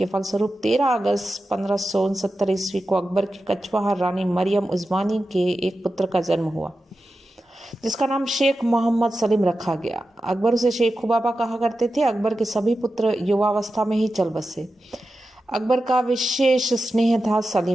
फलस्वरूप 13 अगस्त 1569 ईस्वी को अकबर की कछवाहा रानी मरियम उस्मानी के एक पुत्र का जन्म हुआ, जिसका नाम शेख मोहम्मद सलीम रखा गया। अकबर उसे शेख खुबाबा कहा करते थे। अकबर के सभी पुत्र युवावस्था में ही चल बसे। अकबर का विशेष स्नेह था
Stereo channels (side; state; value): both; normal; correlation 0.92